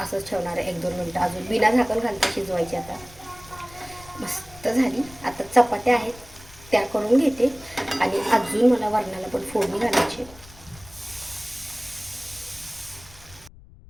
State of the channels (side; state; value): left; noise; rumble, 21 dB below the sound